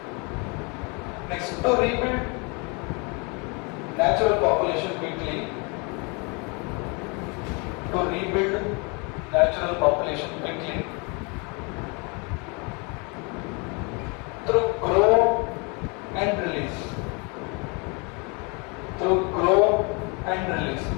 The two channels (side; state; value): right; quieter; 31.7 dB